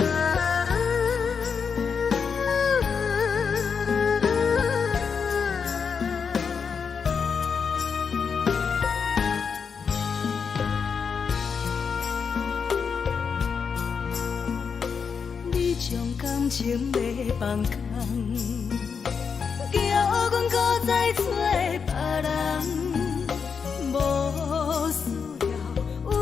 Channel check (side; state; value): right; quieter; 6.1 dB